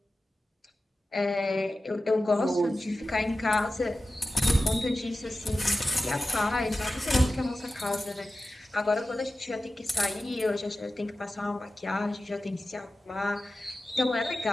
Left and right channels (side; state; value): both; normal; correlation 0.94